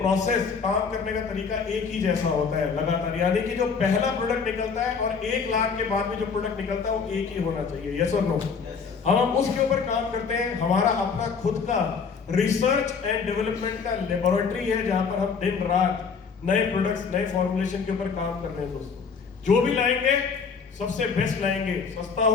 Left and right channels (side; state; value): right; quieter; 5.6 dB